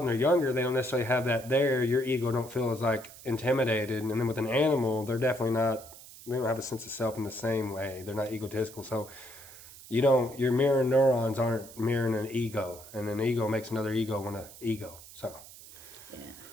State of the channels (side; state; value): right; noise; hiss, 18 dB below the sound